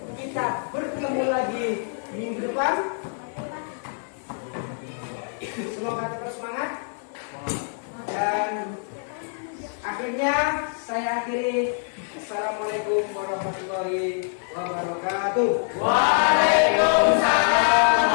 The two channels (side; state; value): right; silent; 62 dB below the other